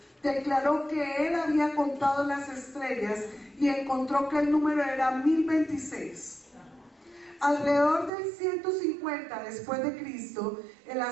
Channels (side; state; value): left; drops out; at 8.1 s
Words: declaró que él había contado las estrellas y encontró que el número era 1026. Alrededor del 150 después de Cristo, el